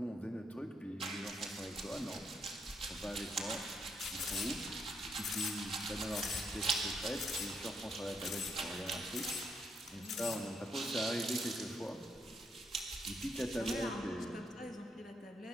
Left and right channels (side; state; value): both; normal; correlation 0.77